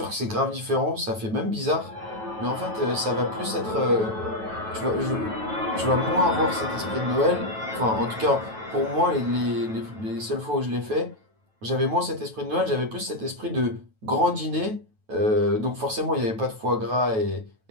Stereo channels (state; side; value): late; left; 9.2 ms